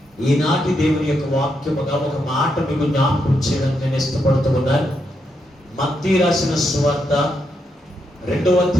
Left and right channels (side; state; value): both; normal; correlation 0.81